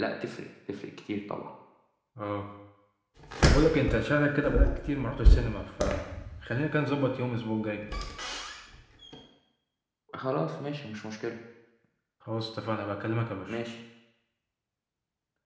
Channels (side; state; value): both; identical; correlation 1.00